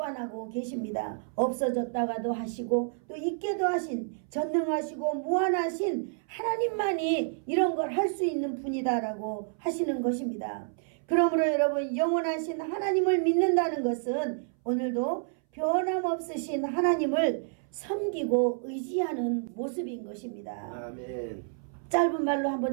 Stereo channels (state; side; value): silent; left; 58 dB below the other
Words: 계십니다. 없어졌다가도 하시고 또 있게도 하신 전능하시고 무한하신 하나님만이 이런 걸 할 수 있는 분이다라고 하시는 것입니다. 그러므로 여러분 영원하신 하나님을 믿는다는 것은 오늘도 변함없으신 하나님을 섬기고 의지하는 모습인 것입니다. 아멘. 짧은 말로